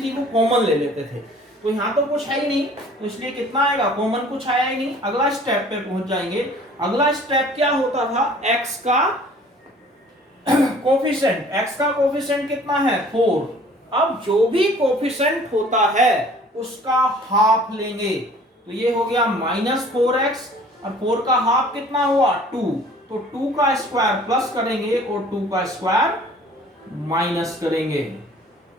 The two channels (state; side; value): normal; both; correlation 0.51